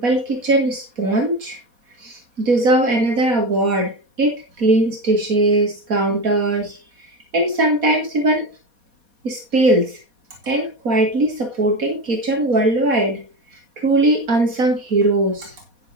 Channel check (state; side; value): late; left; 4.2 ms